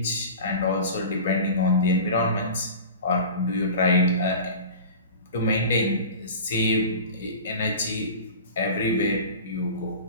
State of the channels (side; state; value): both; inverted; correlation -0.35